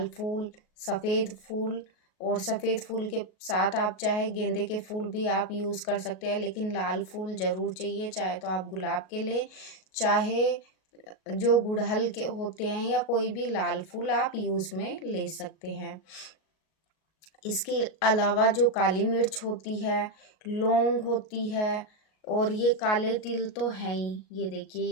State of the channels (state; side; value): late; right; 38 ms